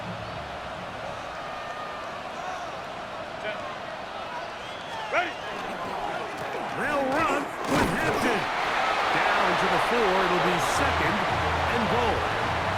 They'll run with Hampton. Down to the 4. It'll be 2nd and goal.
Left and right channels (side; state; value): both; identical; correlation 1.00